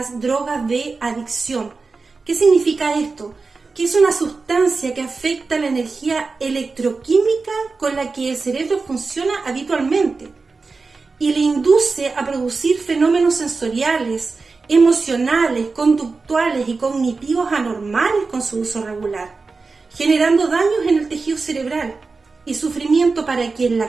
drogas de adicción. ¿Qué significa esto? Que es una sustancia que afecta la energía electroquímica con la que el cerebro funciona habitualmente. y le induce a producir fenómenos sensoriales, emocionales, conductuales y cognitivos anormales con su uso regular, generando daños en el tejido cerebral y sufrimiento para quien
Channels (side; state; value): left; quieter; 4.2 dB